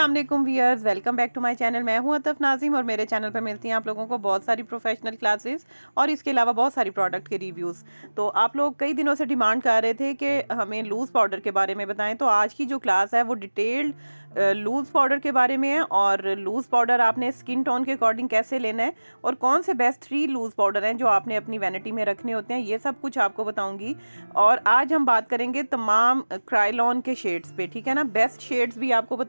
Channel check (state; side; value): inverted; both; correlation -1.00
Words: वालेकुम viewers, welcome back to my channel. मैं हूं अतफ नाज़िम और मेरे चैनल पर मिलती हैं आप लोगों को बहुत सारी प्रोफेशनल क्लासेस और इसके अलावा बहुत सारी प्रोडक्ट के रिव्यूज़। तो आप लोग कई दिनों से डिमांड कर रहे थे कि हमें लूज़ पाउडर के बारे में बताएं, तो आज की जो क्लास है वो डिटेल्ड लूज़ पाउडर के बारे में है। और लूज़ पाउडर आपने स्किन टोन के अकॉर्डिंग कैसे लेना है और कौन से बेस्ट 3 लूज़ पाउडर हैं जो आपने अपनी वैनिटी में रखने होते हैं, ये सब कुछ आपको बताऊंगी। और आज हम बात करेंगे तमाम क्राइलॉन के शेड्स पे, ठीक है ना। बेस्ट शेड्स भी आपको